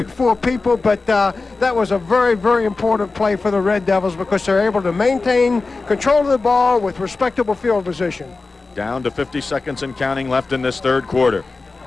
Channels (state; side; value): quieter; right; 3.8 dB